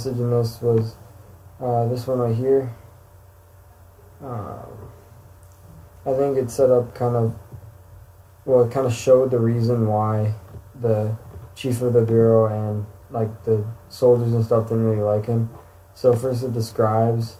in this was this one right here. Um, I think it set up it kind of showed the reason why the chief of the bureau and like the soldiers and stuff didn't really like him. So first it describes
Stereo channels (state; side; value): identical; both; correlation 1.00